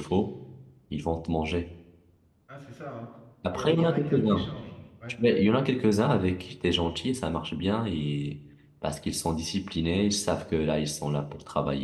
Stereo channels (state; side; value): identical; both; correlation 1.00